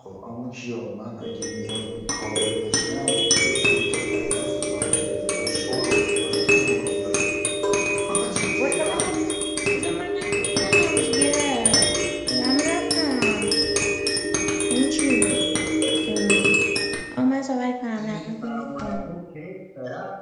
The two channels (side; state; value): both; identical; correlation 1.00